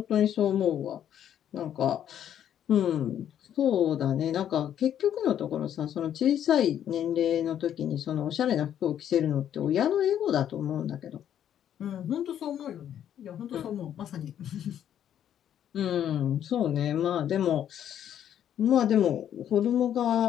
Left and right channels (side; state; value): right; quieter; 10.1 dB